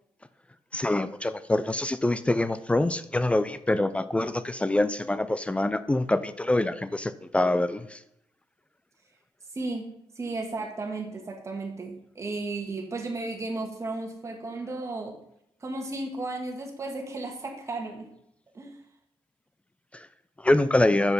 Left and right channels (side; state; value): both; normal; correlation 0.91